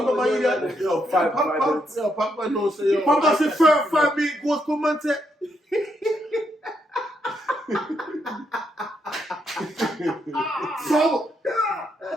idiot? Yo, Pogba knows. Pogba say 5 minutes goes come and say. So,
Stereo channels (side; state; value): both; normal; correlation 0.78